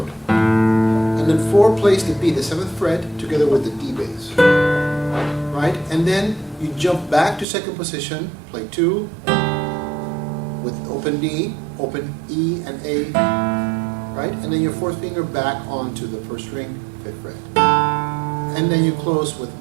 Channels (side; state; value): left; drops out; at 7.5 s